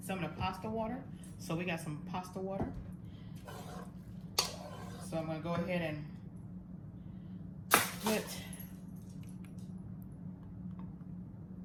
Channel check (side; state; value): both; identical; correlation 1.00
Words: some of the pasta water. So we got some pasta water. So I'm gonna go ahead and put